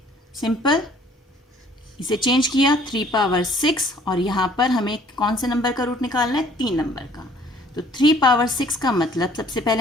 सिंपल इसे चेंज किया 3 पावर 6 और यहाँ पर हमें कौन से नंबर का रूट निकालना है, 3 नंबर का। तो 3 पावर 6 का मतलब सबसे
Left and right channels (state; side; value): normal; both; correlation 0.57